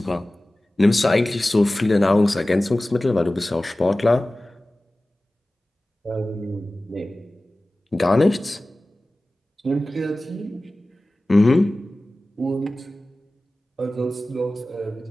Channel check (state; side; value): normal; both; correlation 0.97